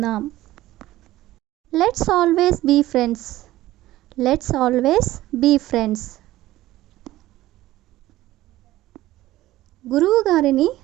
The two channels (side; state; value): left; quieter; 15.9 dB